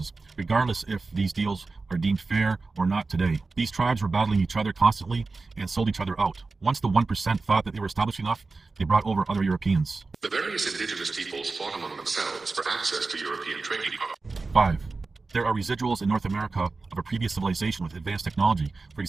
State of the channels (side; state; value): left; quieter; 3.9 dB